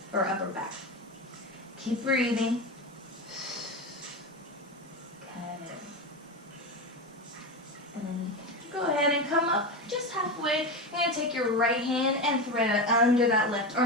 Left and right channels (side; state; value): both; normal; correlation 0.19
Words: or upper back. Keep breathing. Good. And then go ahead and come up just halfway. You're going to take your right hand and thread it under that left